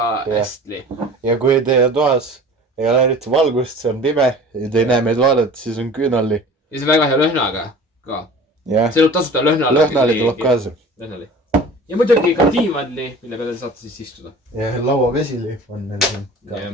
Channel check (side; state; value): both; normal; correlation 0.42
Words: hästi. Ja kui teie toas ei ole eriti valgust, see on pime ja te ei näe meid vaadata, siis on küünalli. Ja see on väga hea lõhnaga ka. See tuleb tasuta lõhnali. Lõhnali tuleb kaasa. Lõhnali. Ja muidugi ka diivanli, mille peale saate siis istuda. Ja lauavesili on meil siin ka.